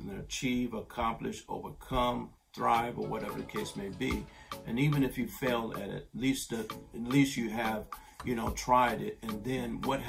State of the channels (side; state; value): both; identical; correlation 1.00